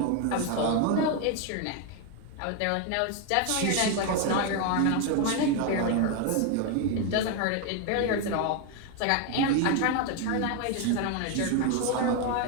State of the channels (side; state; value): both; different; correlation 0.01